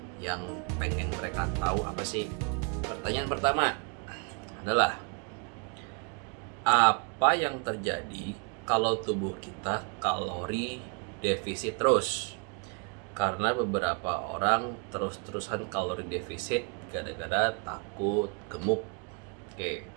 yang pengen mereka tahu apa sih. Pertanyaan pertama adalah, apa yang terjadi kalau tubuh kita kalori defisit terus? Karena beberapa orang terus-terusan kalori defisit gara-gara takut gemuk. Oke,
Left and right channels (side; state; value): left; quieter; 35.3 dB